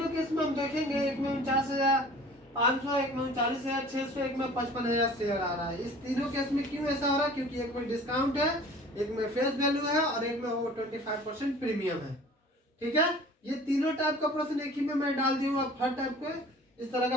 केस में हम देखेंगे, एक में 49,500, एक में 39,600, एक में 55,000 शेयर आ रहा है। इस तीनों केस में क्यों ऐसा हो रहा है? क्योंकि एक में डिस्काउंट है, एक में फेस वैल्यू है और एक में वो 25% प्रीमियम है। ठीक है, ये तीनों टाइप का प्रश्न एक ही में मैं डाल दी हूँ, आप हर टाइप के इस तरह का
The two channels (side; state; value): both; normal; correlation 0.46